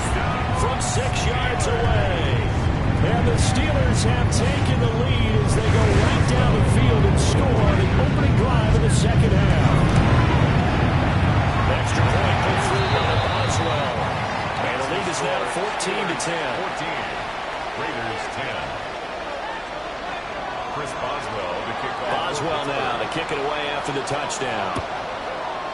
from 6 yards away. And the Steelers have taken the lead as they go right down the field and score on the opening drive of the second half. Extra point put through by Boswell. And the lead is now 14-10. 14. Raiders 10. Chris Boswell to kick off. Boswell now to kick it away after the touchdown.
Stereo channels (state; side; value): identical; both; correlation 1.00